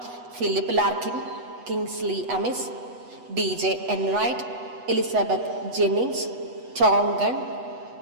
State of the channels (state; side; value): late; left; 8.1 ms